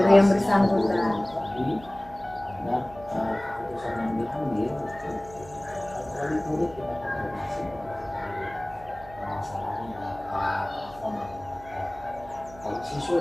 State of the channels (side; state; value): right; noise; hum, 19 dB below the sound